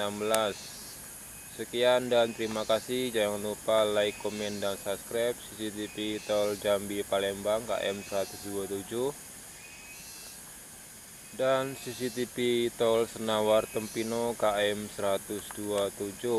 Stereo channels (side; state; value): both; identical; correlation 1.00